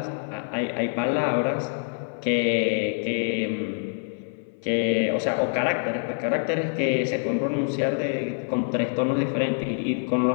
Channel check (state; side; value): silent; right; 56 dB below the other